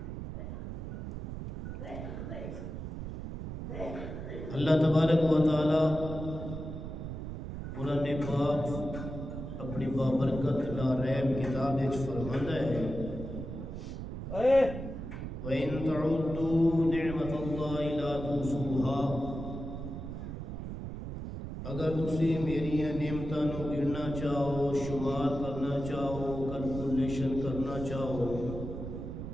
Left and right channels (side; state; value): right; noise; rumble, 7 dB below the sound